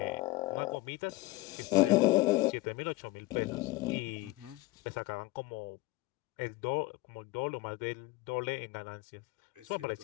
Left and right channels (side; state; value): right; quieter; 20.3 dB